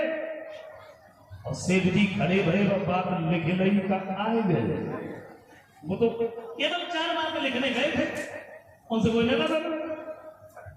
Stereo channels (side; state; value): both; identical; correlation 1.00